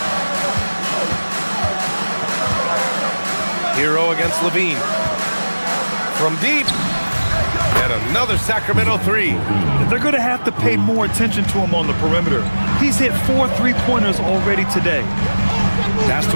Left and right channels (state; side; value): inverted; both; correlation -1.00